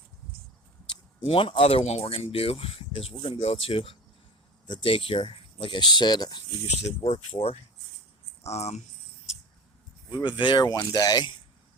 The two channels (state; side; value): normal; both; correlation 0.32